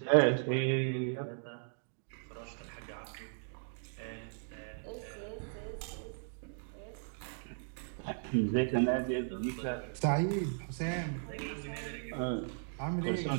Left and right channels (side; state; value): left; silent; digital silence